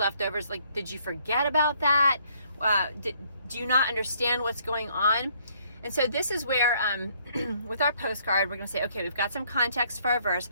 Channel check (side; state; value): both; inverted; correlation -0.66